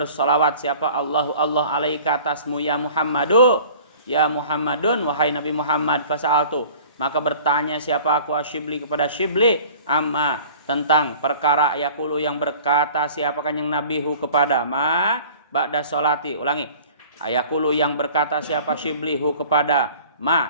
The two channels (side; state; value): both; inverted; correlation -0.46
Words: siapa? Allah alaika atasmu ya Muhammadu, ya Muhammadun, wahai Nabi Muhammad. Fasa'altu, maka bertanya siapa aku Syibli kepada Syibli, amma, tentang perkara yaqulu yang berkata siapa kanjeng Nabi hu kepada ma ba'da sholati. Ulangi, yaqulu yang berkata siapa Syibli hu kepada